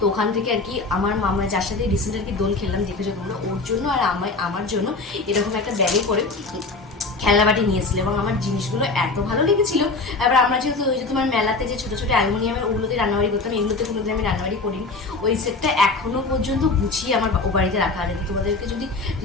ওখান থেকে আর কি আমার মামা, যার সাথে রিসেন্ট আর কি দোল খেললাম দেখেছো তোমরা, ওর জন্য আর আমার জন্য এরকম একটা ব্যাগে করে খেলনাবাটি নিয়েছিল, এবং আমার জিনিসগুলো এত ভালো লেগেছিল। এবার আমরা যেহেতু ওই যে তোমার মেলাতে যে ছোটো ছোটো অ্যালুমিনিয়ামের ওগুলোতে রান্নাবাড়ি করতাম, এগুলোতে কোনোদিন আমি রান্নাবাড়ি করিনি। ওই সেটটা এখনও পর্যন্ত গুছিয়ে আমার ও বাড়িতে রাখা আছে। তোমাদেরকে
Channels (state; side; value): quieter; right; 3.7 dB